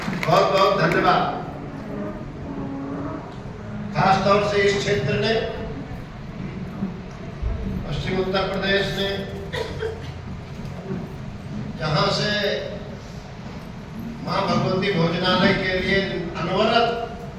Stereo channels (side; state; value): both; identical; correlation 1.00